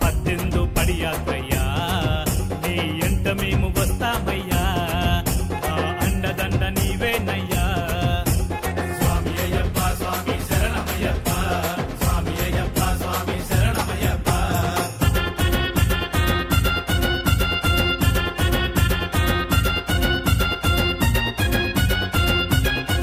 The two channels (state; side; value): identical; both; correlation 1.00